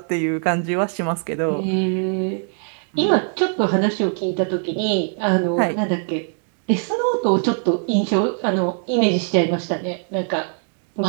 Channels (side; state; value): left; silent; 55 dB below the other